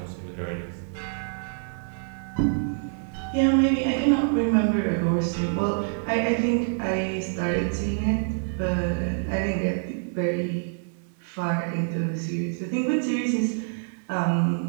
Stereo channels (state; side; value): silent; left; 61 dB below the other